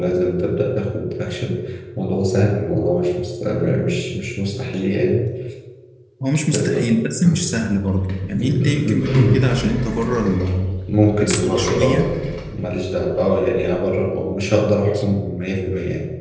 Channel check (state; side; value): identical; both; correlation 1.00